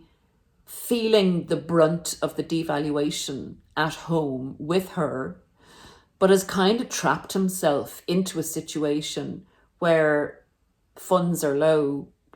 feeling the brunt of the devaluation at home with her, but has kind of trapped himself into a situation where funds are low,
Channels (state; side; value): identical; both; correlation 1.00